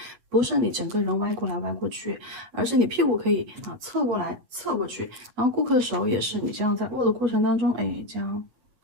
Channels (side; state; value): left; late; 8.6 ms